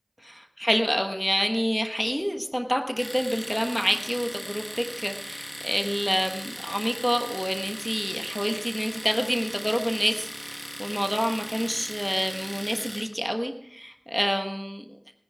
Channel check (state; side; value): identical; both; correlation 1.00